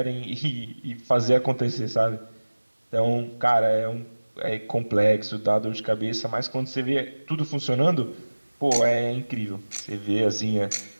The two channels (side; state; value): both; inverted; correlation -1.00